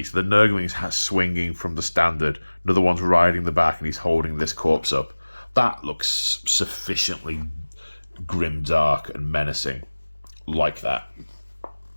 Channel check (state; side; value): inverted; both; correlation -1.00